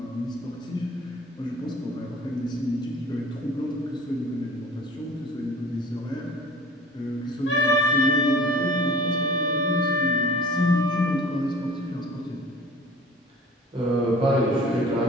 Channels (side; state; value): both; normal; correlation 0.45